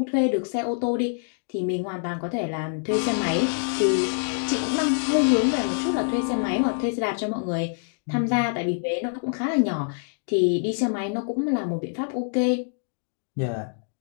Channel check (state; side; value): silent; right; digital silence